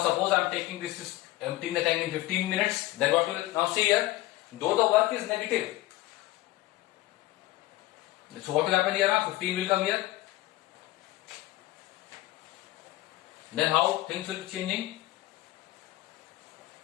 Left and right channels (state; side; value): quieter; right; 17.6 dB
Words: suppose I am taking this is emptying the tank in 15 minutes, then what will, now see here, though the work is negative. So what will happen here now? 15 will come here. Then how things will be changing?